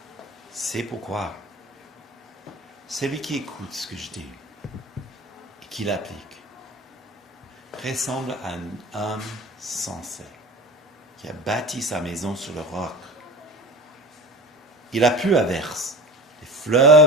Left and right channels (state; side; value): normal; both; correlation 0.34